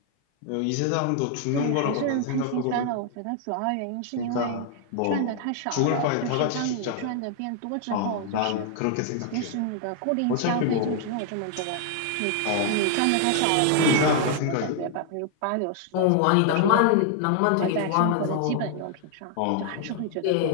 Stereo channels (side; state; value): both; different; correlation 0.00